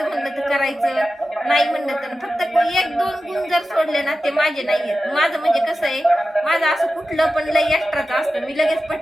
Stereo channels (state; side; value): normal; both; correlation 0.93